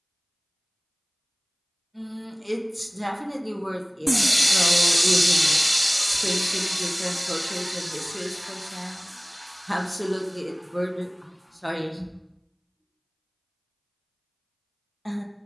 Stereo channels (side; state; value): both; identical; correlation 1.00